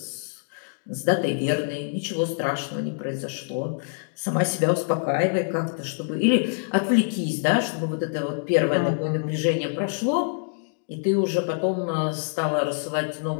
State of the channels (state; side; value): silent; right; digital silence